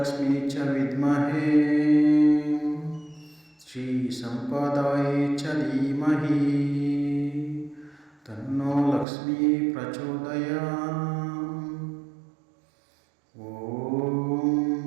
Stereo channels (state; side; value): drops out; left; at 9.1 s